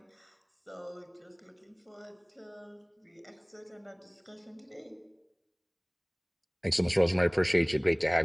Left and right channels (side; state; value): both; identical; correlation 1.00